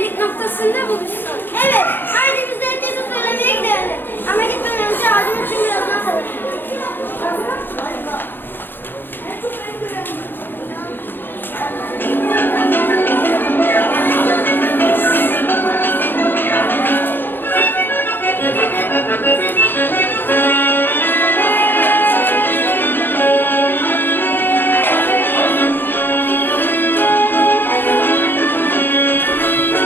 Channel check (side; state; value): right; late; 0.097 ms